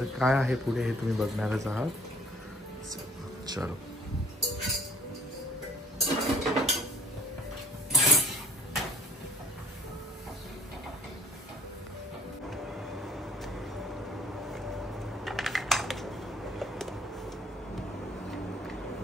काय आहे पुढे हे तुम्ही बघणारच आहात. चलो.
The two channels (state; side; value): normal; both; correlation 0.58